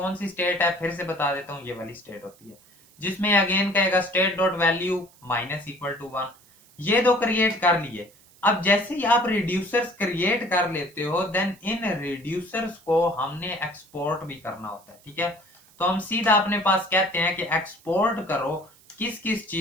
सी स्टेट है फिर से बता देता हूं, ये वाली स्टेट होती है जिसमें अगेन कहेगा state dot value minus equal to 1। ये दो क्रिएट कर लिए। अब जैसे ही आप रिड्यूसर्स क्रिएट कर लेते हो देन इन रिड्यूसर्स को हमने एक्सपोर्ट भी करना होता है, ठीक है। तो हम सीधा अपने पास कहते हैं कि एक्सपोर्ट करो किस किस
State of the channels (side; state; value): right; noise; hiss, 28 dB below the sound